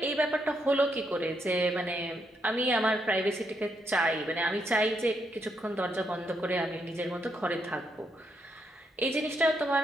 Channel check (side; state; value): both; normal; correlation 0.78